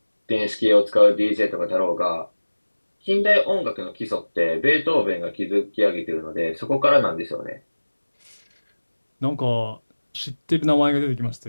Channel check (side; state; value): both; inverted; correlation -1.00